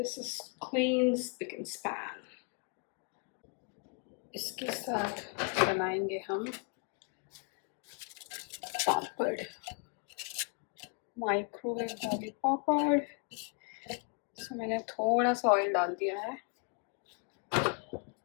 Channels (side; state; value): right; quieter; 34.6 dB